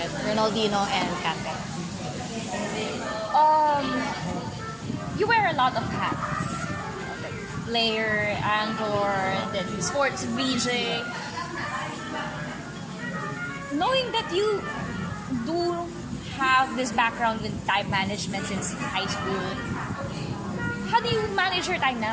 Ronaldinho and Kante. You wear a lot of hats. Like player, anchor, then sports VJ. Knowing that you do have this background with time management since high school, how do you manage your time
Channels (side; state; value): both; identical; correlation 1.00